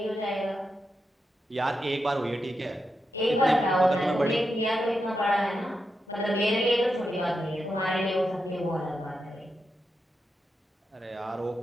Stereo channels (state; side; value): normal; both; correlation 0.87